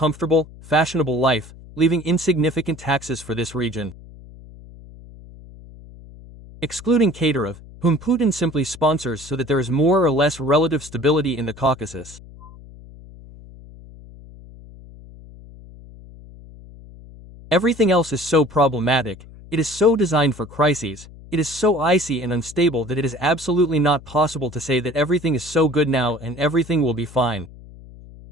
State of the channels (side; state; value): left; noise; hum, 19 dB below the sound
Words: fashionable life, leaving insignificant taxes for this region. Excluding Kadyrov, whom Putin simply sponsors so that there is more or less relative stability in the Caucasus. Everything else is so problematic, it is so designed for crises, it is so icy and unstable that it is absolutely not possible to say that everything is so good now and everything will be fine.